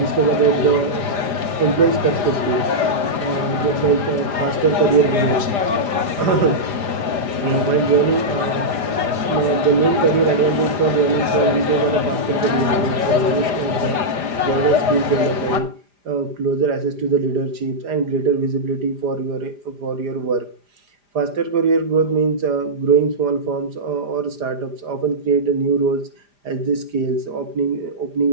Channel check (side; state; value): left; late; 4.9 ms